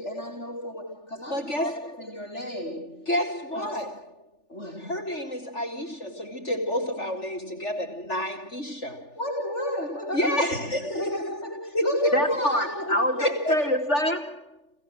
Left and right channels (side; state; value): right; late; 3.4 ms